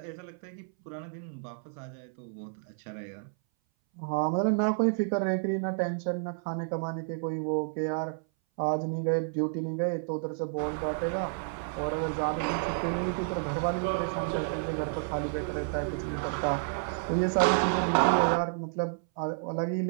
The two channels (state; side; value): silent; left; 58 dB below the other